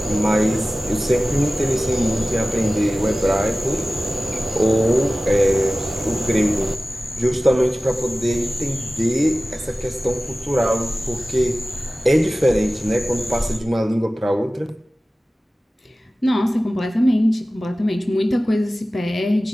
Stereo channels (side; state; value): both; normal; correlation 0.97